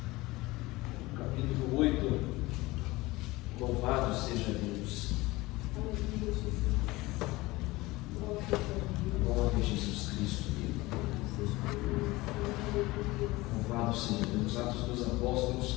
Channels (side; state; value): right; quieter; 20.6 dB